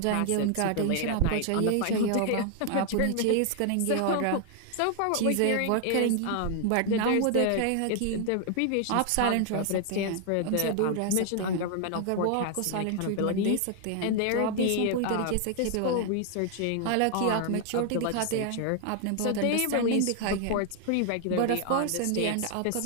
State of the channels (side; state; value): both; different; correlation 0.00